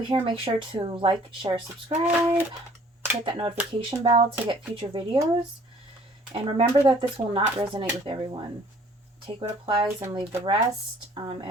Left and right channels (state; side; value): normal; both; correlation 0.56